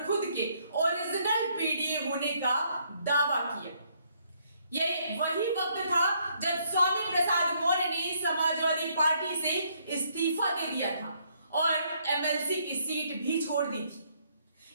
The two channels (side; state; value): both; inverted; correlation -0.70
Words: खुद के ओरिजिनल पीडीए होने का दावा किया। यह वही वक्त था जब स्वामी प्रसाद मौर्य ने समाजवादी पार्टी से इस्तीफा दे दिया था और एमएलसी की सीट भी छोड़ दी थी।